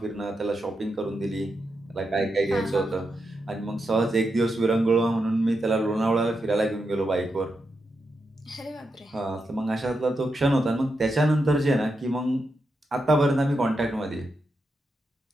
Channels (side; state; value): both; normal; correlation 0.86